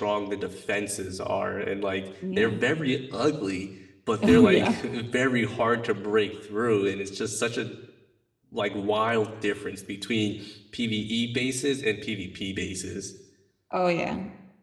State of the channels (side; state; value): both; identical; correlation 1.00